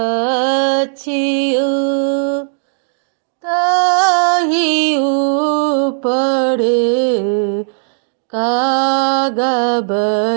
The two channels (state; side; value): silent; left; digital silence